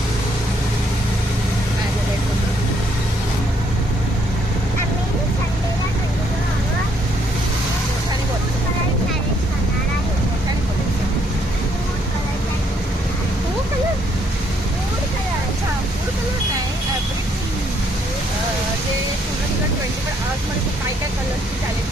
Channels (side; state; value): both; normal; correlation 0.70